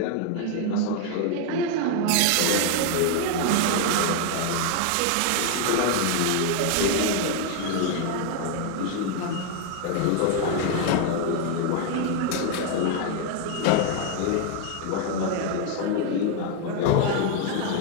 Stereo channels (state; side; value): different; both; correlation 0.00